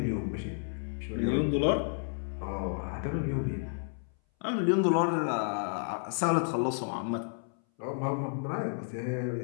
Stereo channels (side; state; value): right; silent; 57 dB below the other